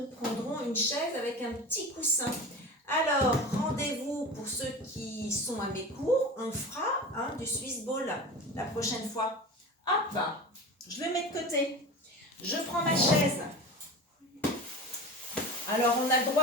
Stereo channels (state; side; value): normal; both; correlation 0.31